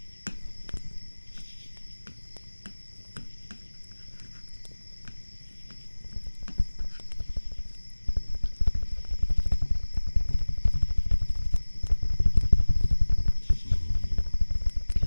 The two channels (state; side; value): inverted; both; correlation -1.00